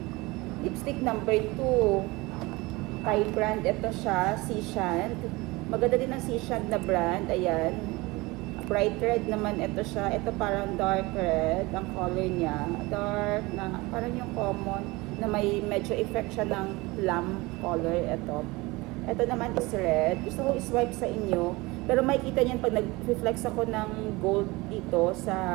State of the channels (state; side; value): quieter; left; 22.8 dB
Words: Lipstick number 2, Thai brand. Ito siya, Seashant. Maganda din ang Seashant na brand. Ayan. Bright red naman ito siya. Ito parang dark red. Ang color niya. Dark na, parang yung common na may medyo effect siya ng plum color. Ito naman is red. Gusto ko i-swipe sa inyo. Pero makikita niyan pag nag-reflex ako ng gold dito